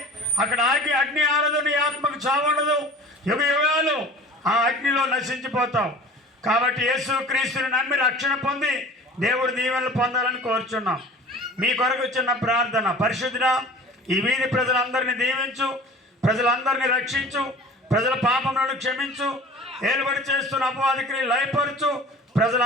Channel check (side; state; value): both; normal; correlation 0.42